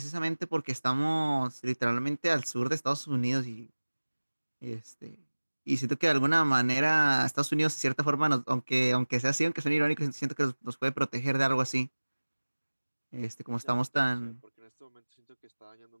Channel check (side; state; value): both; inverted; correlation -1.00